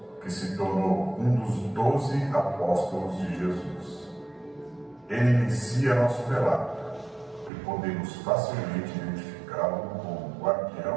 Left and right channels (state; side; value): drops out; left; at 7.5 s